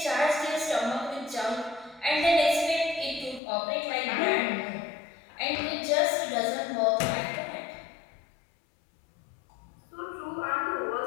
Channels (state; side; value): drops out; right; at 3.4 s